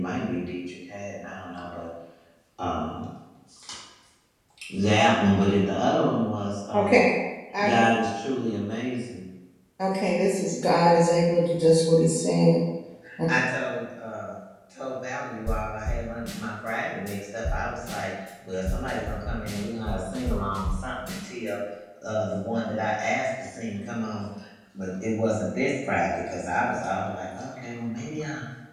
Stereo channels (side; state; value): both; identical; correlation 1.00